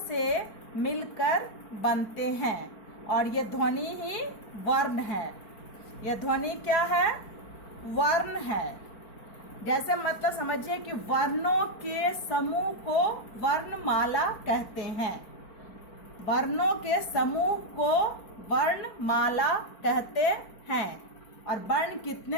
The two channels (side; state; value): right; late; 4.5 ms